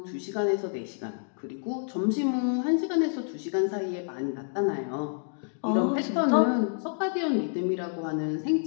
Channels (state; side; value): silent; right; 59 dB below the other